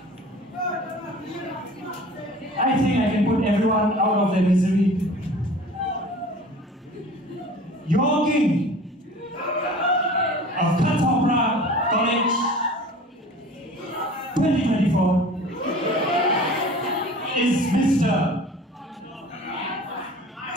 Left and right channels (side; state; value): both; normal; correlation 0.43